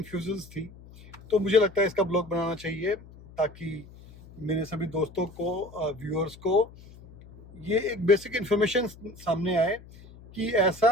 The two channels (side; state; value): left; noise; hum, 20 dB below the sound